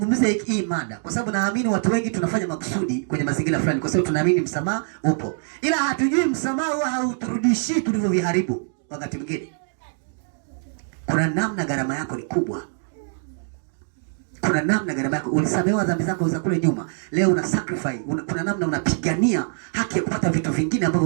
hii mada kwa sababu naamini watu wengi tunafanya makusudi kwenye mazingira fulani kwa sababu tunaamini msamaha upo. Ila hatujui msamaha huwa hauturudishi tulivyoviharibu wakati mwingine. Kuna namna gharama yako ni kubwa. Kuna namna gharama yako ulisamehewa dhambi zako za kule nyuma. Leo una sacrifice, kuna namna unapigania haki ya kupata vitu vingine ambavyo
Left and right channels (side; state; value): left; silent; digital silence